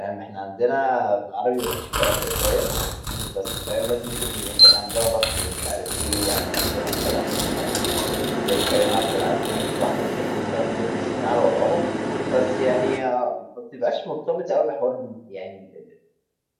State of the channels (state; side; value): identical; both; correlation 1.00